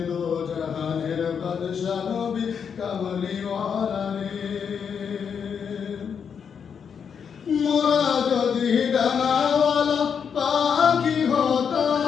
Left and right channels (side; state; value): right; quieter; 7.0 dB